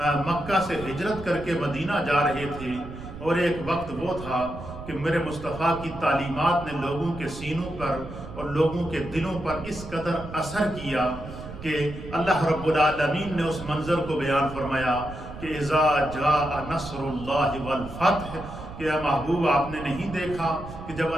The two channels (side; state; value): right; noise; rumble, 12 dB below the sound